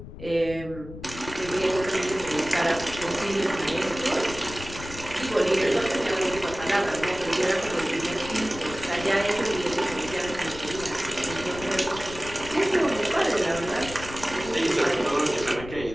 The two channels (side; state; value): left; noise; rumble, 13 dB below the sound